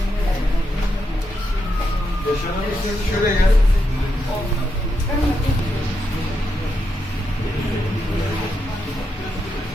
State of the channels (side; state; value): both; normal; correlation 0.84